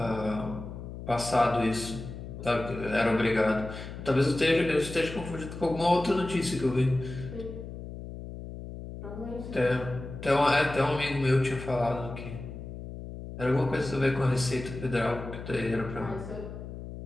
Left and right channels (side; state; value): left; noise; hum, 10 dB below the sound